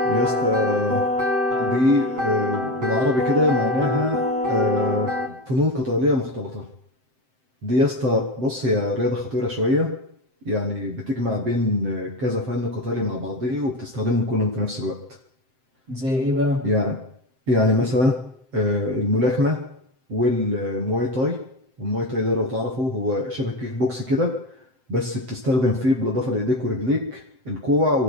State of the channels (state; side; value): late; left; 7.7 ms